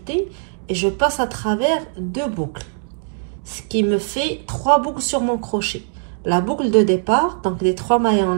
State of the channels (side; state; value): left; silent; digital silence